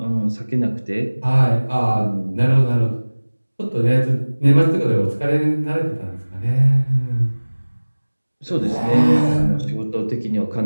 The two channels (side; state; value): both; inverted; correlation -1.00